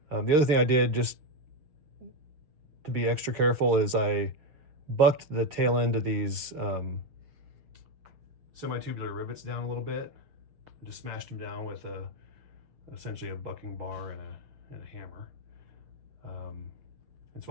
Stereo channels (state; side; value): late; left; 6.6 ms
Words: The other thing I did, just to be extra careful, is I bucked the tail end of these semi-tubular rivets down a little bit, and just smashed them down with essentially a bucking bar and a hammer. And